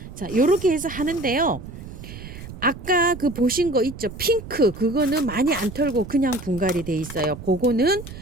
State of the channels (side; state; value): right; noise; rumble, 13 dB below the sound